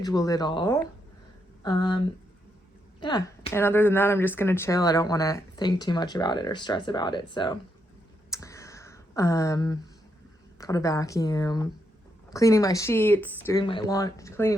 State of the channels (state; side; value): normal; both; correlation 0.79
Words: it all. Yeah, and other than that, I'm just gonna chill. I don't want to think too much about it or stress about it. So, got a vacuum, cleaning my sheets, doing my laundry,